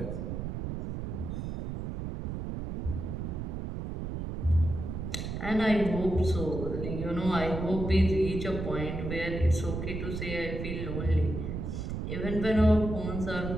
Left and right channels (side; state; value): right; noise; rumble, 4 dB below the sound